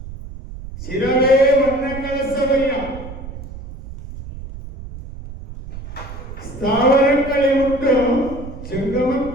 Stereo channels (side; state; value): right; noise; rumble, 12 dB below the sound